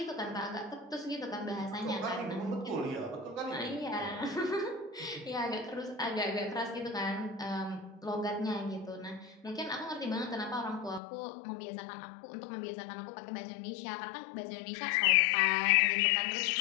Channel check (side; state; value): right; drops out; at 11.0 s